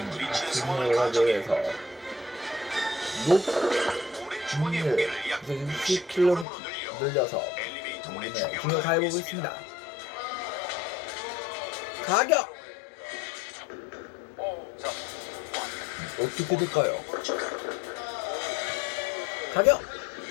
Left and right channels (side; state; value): right; drops out; at 6.5 s